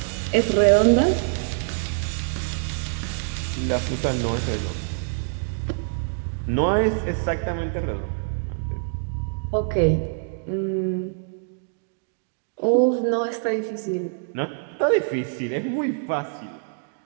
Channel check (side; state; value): left; silent; digital silence